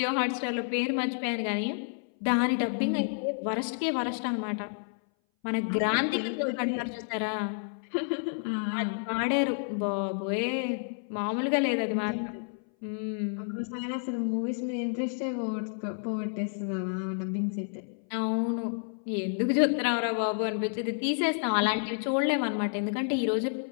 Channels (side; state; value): right; silent; 58 dB below the other